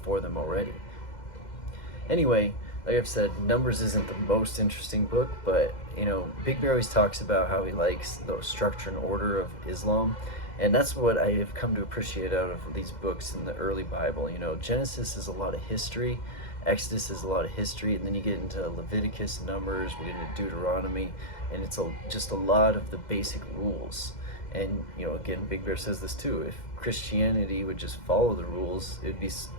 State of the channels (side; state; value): right; late; 2.0 ms